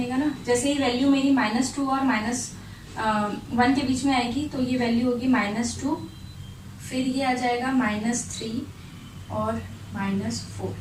ना. जैसे ही वैल्यू मेरी -2 और -1 के बीच में आएगी तो ये वैल्यू होगी -2, फिर ये आ जाएगा -3 और -4.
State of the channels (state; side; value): identical; both; correlation 1.00